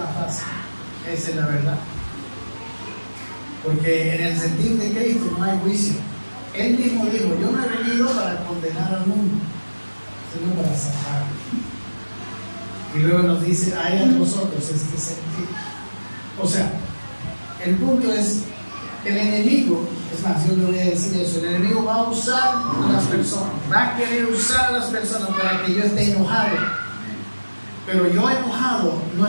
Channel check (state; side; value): inverted; both; correlation -1.00